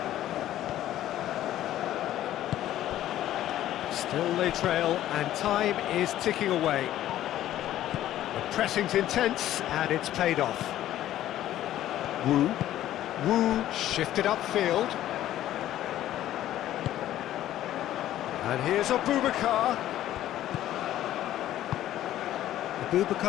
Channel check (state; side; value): quieter; right; 13.0 dB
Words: Still they trail, and time is ticking away. The pressing's intense, and it's paid off. Wu shifted upfield. And here's Abubakar.